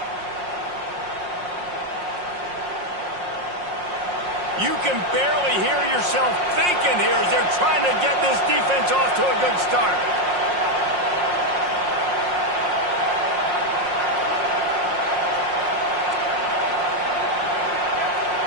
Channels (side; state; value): left; late; 5.6 ms